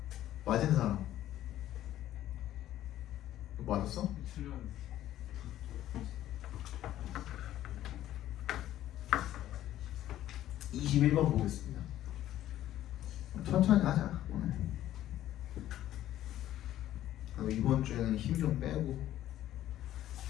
맞은 사람 너 맞았어? 21번 보겠습니다. 천천히 하자 오늘. 이번 주에는 힘 좀 빼고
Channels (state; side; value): quieter; right; 13.0 dB